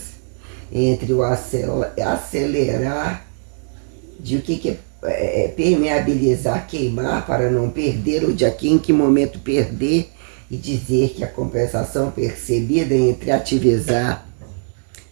entre o acelerar de o que é permeabilizar, queimar para não perder, ou de aqui em que momento perder, e dizer que a compensação percebida entre ativizar,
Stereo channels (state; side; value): silent; left; digital silence